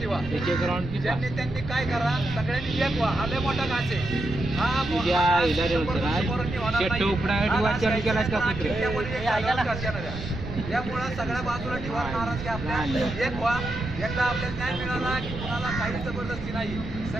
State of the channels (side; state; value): right; noise; rumble, 9 dB below the sound